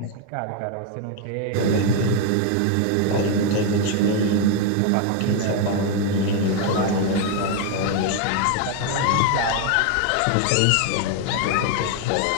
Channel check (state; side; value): different; both; correlation 0.01